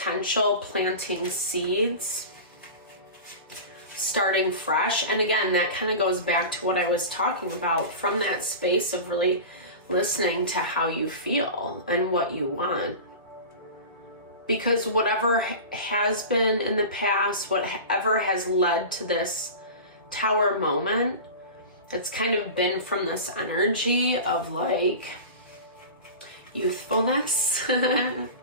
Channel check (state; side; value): inverted; both; correlation -0.31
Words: planting seeds, starting fresh. And again, that kind of goes back to what I was talking about, from that space of really listening to how you feel and what you want. Because whatever has been in the past, whatever has led to this tower moment, it's kind of been from this energy of like youthfulness,